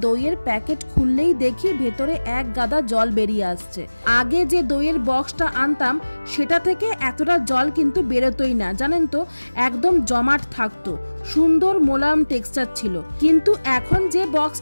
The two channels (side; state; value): both; inverted; correlation -1.00